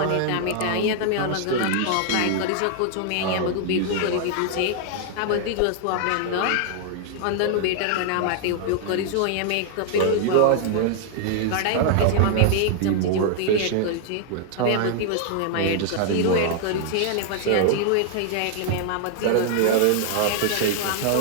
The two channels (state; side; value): different; both; correlation 0.00